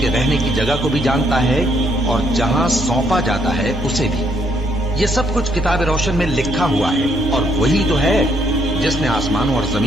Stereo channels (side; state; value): both; normal; correlation 0.71